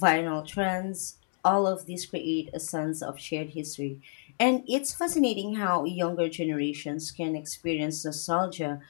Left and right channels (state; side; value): silent; right; 58 dB below the other